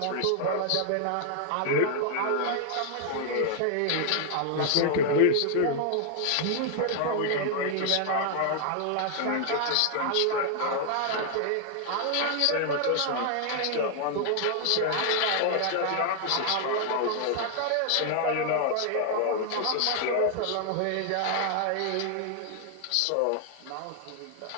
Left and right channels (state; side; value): different; both; correlation 0.00